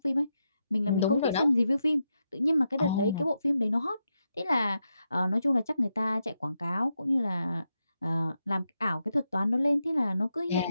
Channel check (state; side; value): inverted; both; correlation -0.85